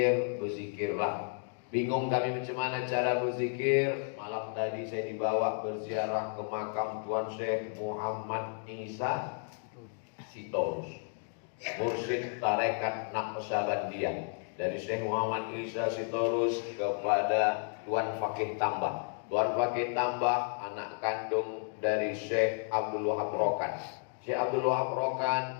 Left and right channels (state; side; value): silent; right; 56 dB below the other